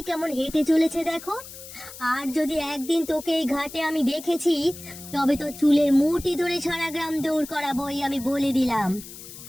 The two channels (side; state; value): left; noise; hiss, 15 dB below the sound